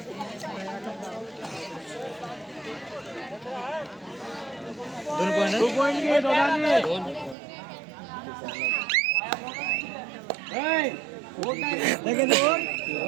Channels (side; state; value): left; drops out; at 7.4 s